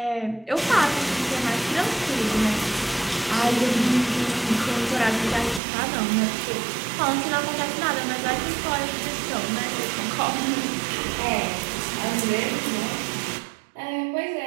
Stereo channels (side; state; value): left; drops out; at 5.6 s